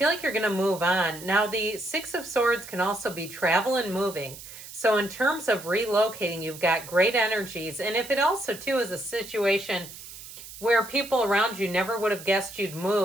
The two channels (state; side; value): noise; right; hiss, 14 dB below the sound